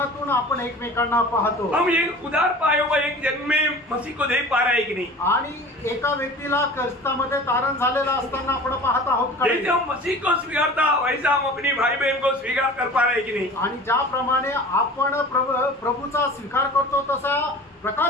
आपण एकमेकांना पाहतो। हम एक उधार पाया हुआ एक जन्म में मसीह को देख पा रहे हैं कि नहीं आणि एका व्यक्तीला ख्रिस्तामध्ये तारण झालेला असताना आपण पाहत आहोत का? जैसे हम मसीह को स्वीकारता वैसा हम अपनी भाई बहन को स्वीकार कर पा रहे हैं कि नहीं? आणि ज्याप्रमाणे आपण प्रभूचा स्वीकार करतो तसा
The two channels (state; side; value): normal; both; correlation 0.40